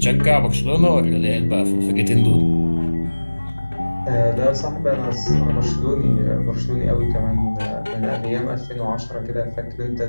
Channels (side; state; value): both; inverted; correlation -1.00